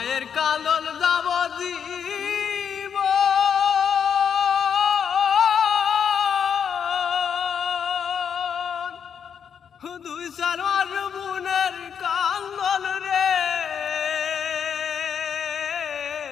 কান্দন যাব দিব দুই সার বোনের কান্দন রে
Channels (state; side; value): quieter; right; 7.6 dB